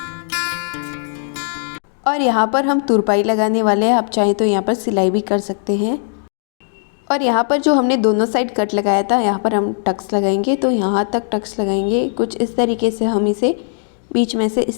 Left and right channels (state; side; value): silent; right; digital silence